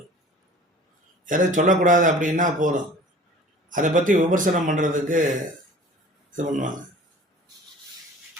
எதை சொல்லக்கூடாது அப்படின்னா போதும், அதை பற்றி விமர்சனம் பண்ணுறதுக்கு இது பண்ணுவாங்க.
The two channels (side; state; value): both; normal; correlation 0.45